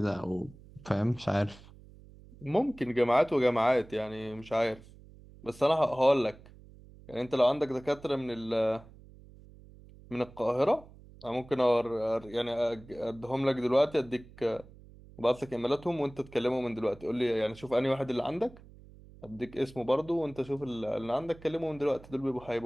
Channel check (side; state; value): right; noise; hum, 21 dB below the sound